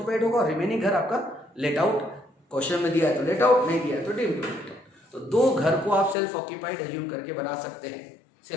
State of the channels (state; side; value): drops out; right; at 6.2 s